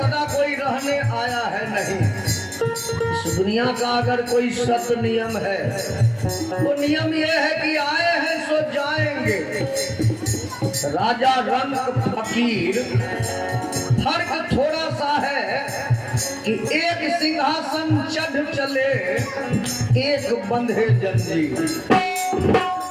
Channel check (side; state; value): both; identical; correlation 1.00